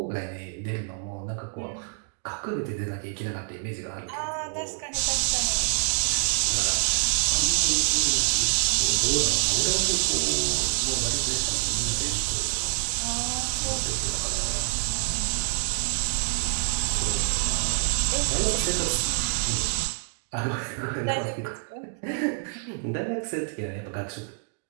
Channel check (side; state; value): left; silent; 60 dB below the other